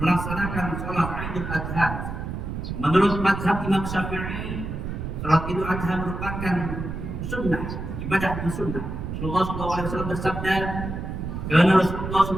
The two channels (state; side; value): noise; right; rumble, 6 dB below the sound